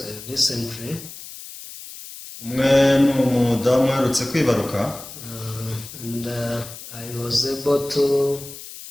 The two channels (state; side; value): noise; left; hiss, 14 dB below the sound